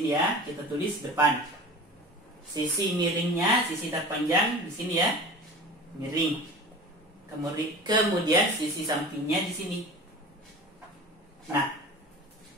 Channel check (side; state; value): both; normal; correlation 0.36